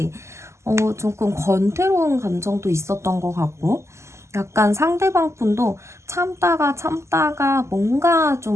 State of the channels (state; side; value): late; left; 0.13 ms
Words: 조금 권태로운 감정도 있었던 것 같고, 약간 상대방 분도 참다가 참다가 뭔가